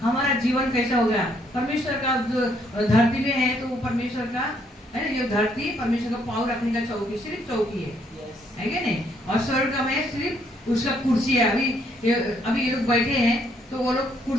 हमारा जीवन कैसा होगा? परमेश्वर का जो धरती में है तो वो परमेश्वर का है, ये धरती परमेश्वर का पाँव रखने का चौकी, सिर्फ चौकी है कि नहीं? और स्वर्ग में सिर्फ उसका कुर्सी है। अभी ये लोग बैठे हैं तो वो लोग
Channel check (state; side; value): normal; both; correlation 0.70